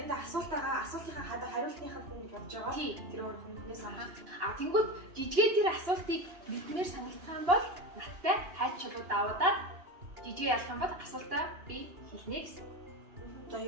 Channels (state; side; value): late; left; 2.8 ms